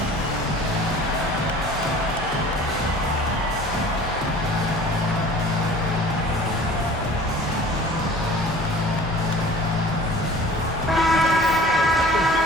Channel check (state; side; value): normal; both; correlation 0.45